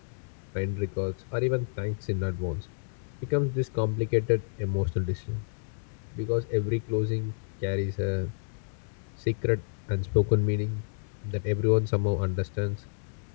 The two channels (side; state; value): right; silent; digital silence